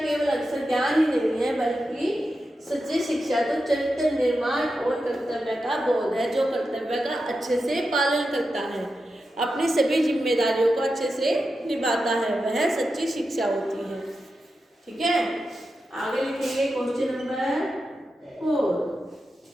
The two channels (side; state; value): both; normal; correlation 0.90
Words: केवल अक्षर ज्ञान ही नहीं है बल्कि सच्ची शिक्षा तो चरित्र निर्माण और कर्तव्य का बोध है, जो कर्तव्य का अच्छे से पालन करता है, अपनी सभी जिम्मेदारियों को अच्छे से निभाता है, वह सच्ची शिक्षा होती है। ठीक है, आगे लिखेंगे क्वेश्चन नंबर 4।